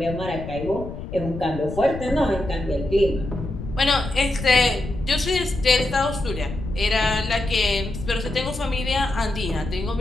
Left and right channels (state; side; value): noise; left; rumble, 9 dB below the sound